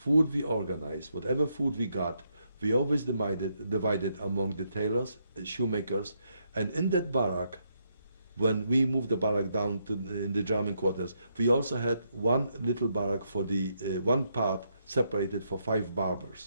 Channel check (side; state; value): both; inverted; correlation -0.78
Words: food we organized, whatever food we got, we always divided among the tailors, shoemakers, and in that barrack, when we moved the barrack down to in the German quarters, we also had one little barrack for the one part separated for 5